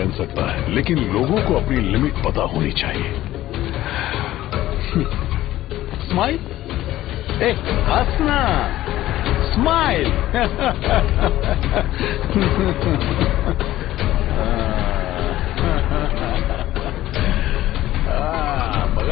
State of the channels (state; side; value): quieter; right; 14.8 dB